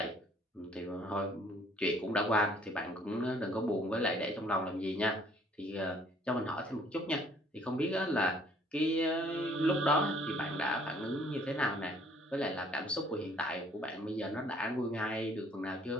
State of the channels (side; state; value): both; normal; correlation 0.60